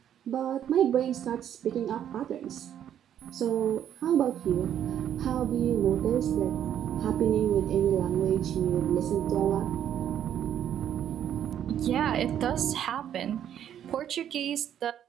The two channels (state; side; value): quieter; left; 10.0 dB